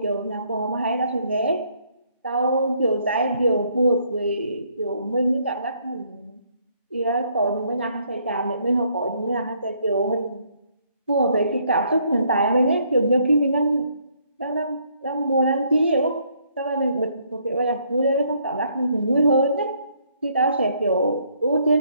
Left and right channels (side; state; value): both; inverted; correlation -0.68